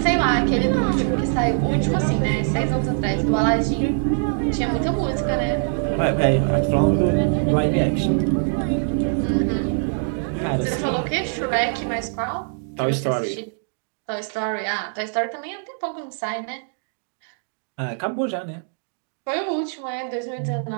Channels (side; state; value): left; silent; 60 dB below the other